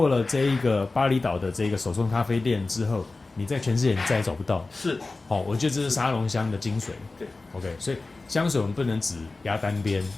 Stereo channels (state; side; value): quieter; right; 3.5 dB